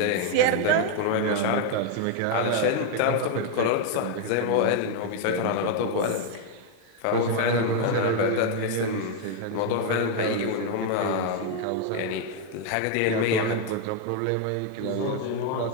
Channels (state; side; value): different; both; correlation 0.01